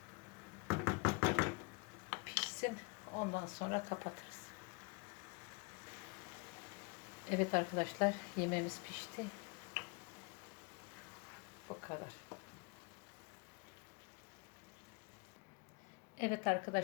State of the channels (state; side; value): quieter; right; 29.3 dB